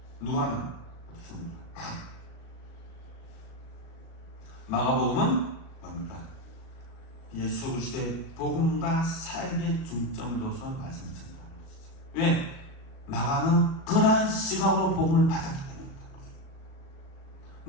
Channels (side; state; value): right; late; 37 ms